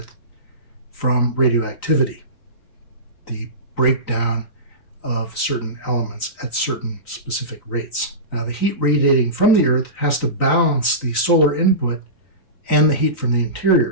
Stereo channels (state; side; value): late; right; 3.9 ms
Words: from radioactivity, the breakdown of certain elements at certain specific rates. Now, the heat radiating from the Earth has to balance the solar input and the heat from the